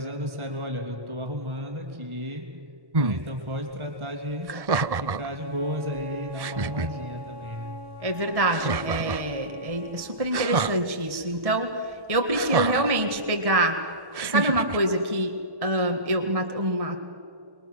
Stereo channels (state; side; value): late; left; 1.1 ms